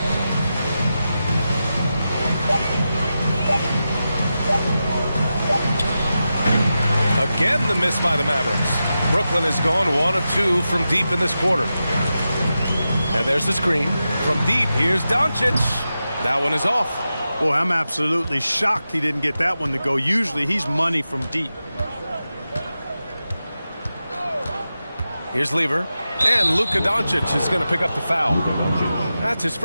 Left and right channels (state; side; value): inverted; both; correlation -0.91